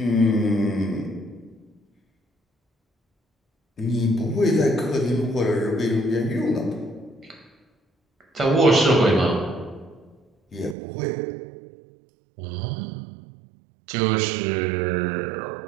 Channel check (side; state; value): left; drops out; at 10.8 s